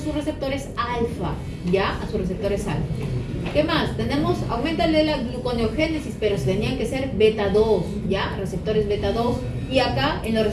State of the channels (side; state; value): both; identical; correlation 1.00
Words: receptores alfa, ¿ya? A sus receptores alfa. ¿Qué más? Tenemos, aumenta la gluconeogénesis, pero tenían que ser beta 2, ¿ya? Receptores beta 2. Y acá, en los